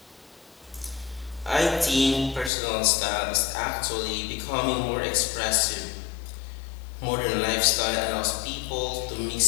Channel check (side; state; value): right; drops out; at 2.5 s